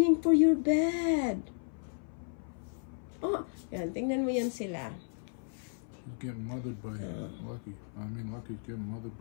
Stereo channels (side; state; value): right; silent; 55 dB below the other